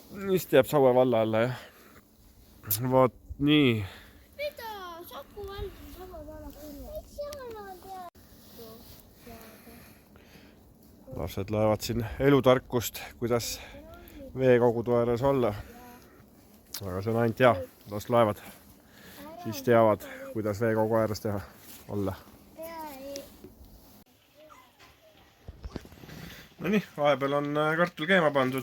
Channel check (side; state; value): both; identical; correlation 1.00